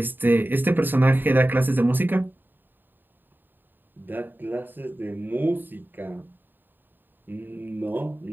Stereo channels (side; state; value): left; late; 0.093 ms